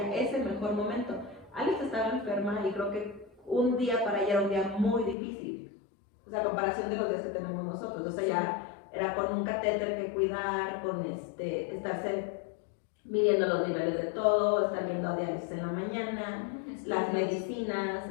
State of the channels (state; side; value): drops out; right; at 5.2 s